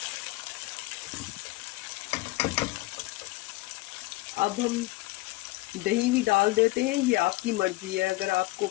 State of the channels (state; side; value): quieter; right; 20.6 dB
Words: अब हम दही भी डाल देते हैं। ये आपकी मर्ज़ी है, अगर आपको